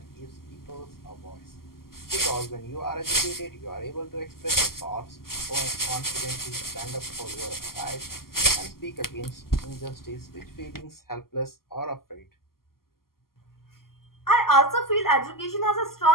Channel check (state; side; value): late; right; 0.92 ms